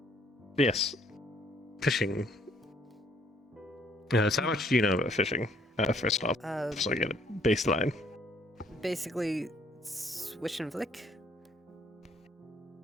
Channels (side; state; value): both; normal; correlation 0.64